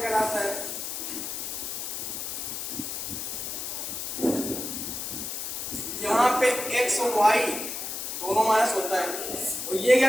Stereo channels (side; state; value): left; noise; hiss, 5 dB below the sound